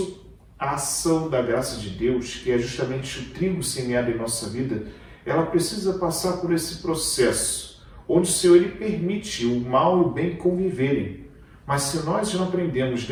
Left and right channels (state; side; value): identical; both; correlation 1.00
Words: a ação da graça de Deus, que é justamente o trigo semeado em nossa vida, ela precisa passar por esse processo, onde o Senhor ele permite o mal e o bem conviverem. Mas se nós não aprendemos